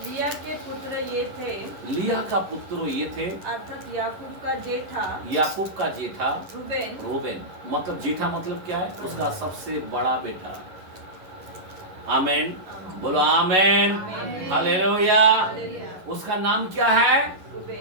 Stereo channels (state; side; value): late; left; 11 ms